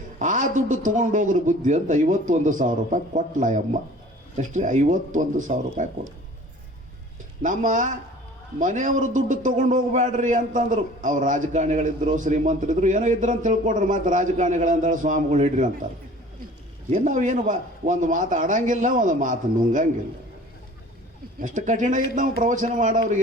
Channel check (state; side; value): normal; both; correlation 0.47